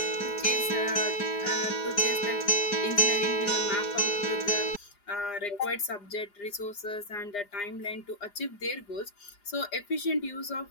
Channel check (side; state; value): right; late; 4.9 ms